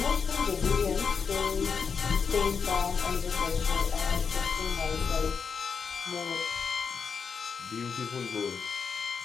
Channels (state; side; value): quieter; right; 5.9 dB